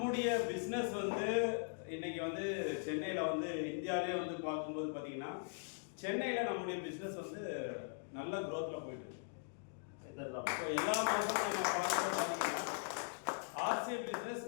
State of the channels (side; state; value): right; silent; digital silence